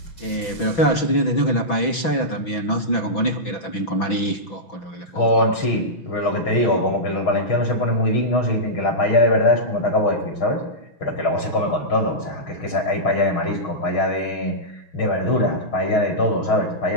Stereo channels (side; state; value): right; late; 6.0 ms